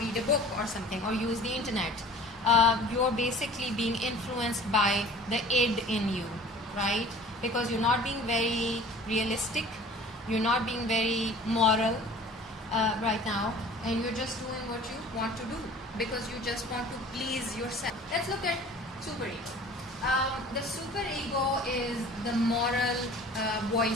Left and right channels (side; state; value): both; normal; correlation 0.46